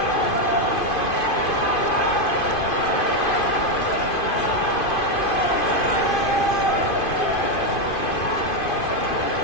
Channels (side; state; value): right; late; 2.5 ms